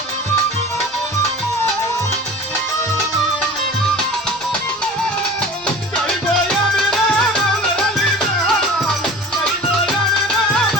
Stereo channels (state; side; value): normal; both; correlation 0.39